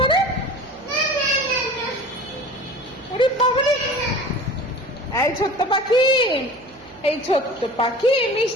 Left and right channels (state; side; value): noise; right; hum, 25 dB below the sound